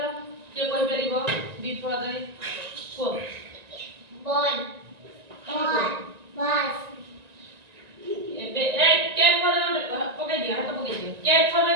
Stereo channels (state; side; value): late; left; 1.9 ms